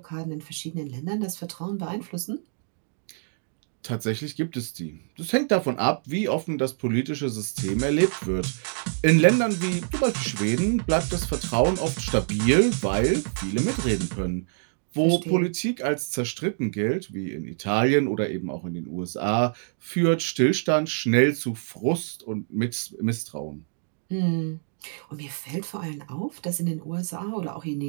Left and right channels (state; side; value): silent; left; digital silence